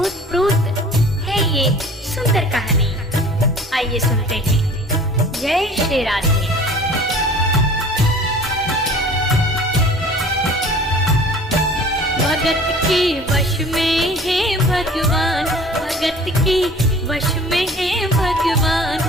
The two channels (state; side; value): normal; both; correlation 0.46